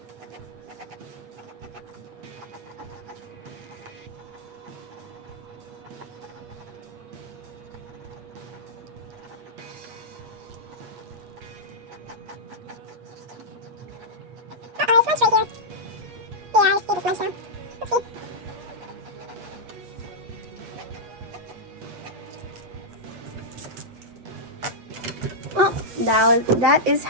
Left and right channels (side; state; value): left; late; 8.4 ms